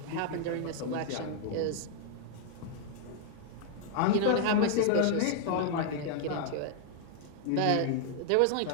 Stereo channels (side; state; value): both; different; correlation -0.01